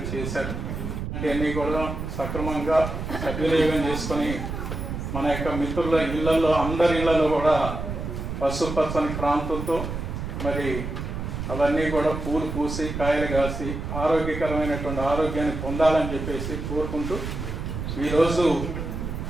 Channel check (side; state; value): right; noise; rumble, 5 dB below the sound